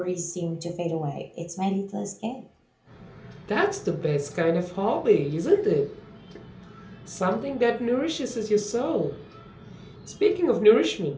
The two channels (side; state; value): both; identical; correlation 1.00